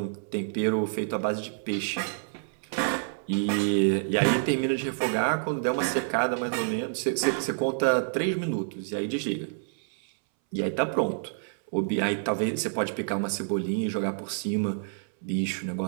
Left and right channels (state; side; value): silent; left; 59 dB below the other